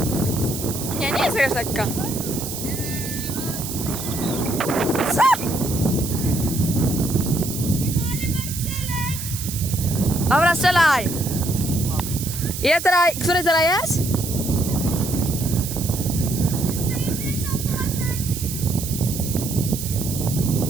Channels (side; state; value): right; noise; hiss, 7 dB below the sound